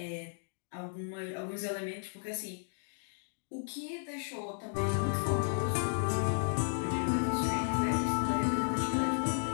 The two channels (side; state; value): right; silent; digital silence